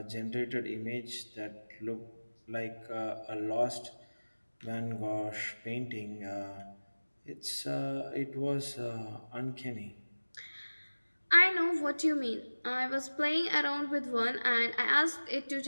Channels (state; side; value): inverted; both; correlation -1.00